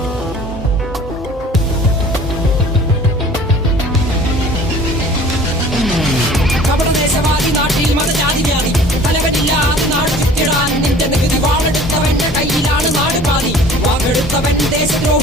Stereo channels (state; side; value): normal; both; correlation 0.48